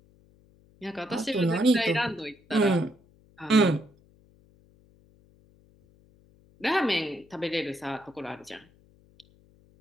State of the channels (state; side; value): noise; left; hum, 30 dB below the sound